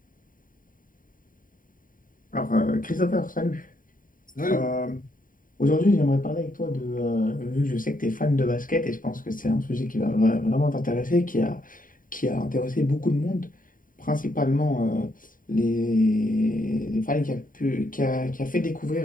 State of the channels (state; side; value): late; right; 0.40 ms